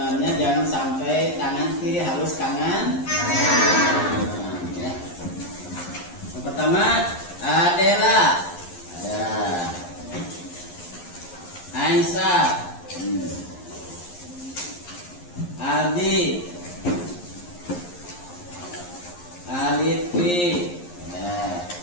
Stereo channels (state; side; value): late; right; 11 ms